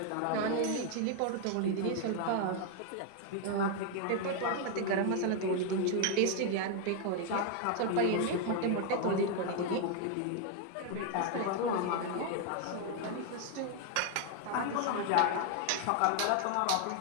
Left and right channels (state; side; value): different; both; correlation 0.00